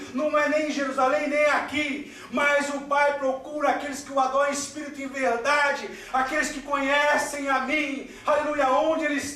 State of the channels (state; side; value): identical; both; correlation 1.00